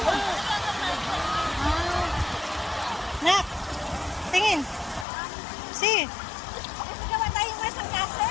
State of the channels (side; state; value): right; drops out; at 5.1 s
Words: Nak, tingin. Si. Gawa tayong masang